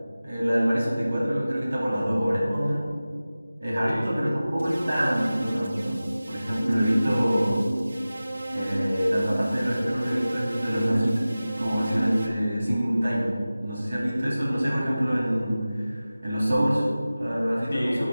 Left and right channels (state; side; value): inverted; both; correlation -0.96